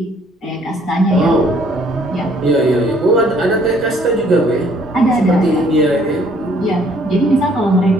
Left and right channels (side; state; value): both; normal; correlation 0.62